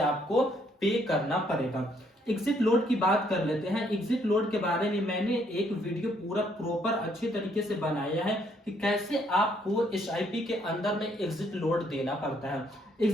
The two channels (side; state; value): both; normal; correlation 0.69